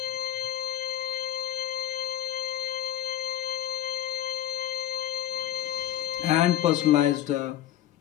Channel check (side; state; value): right; quieter; 12.3 dB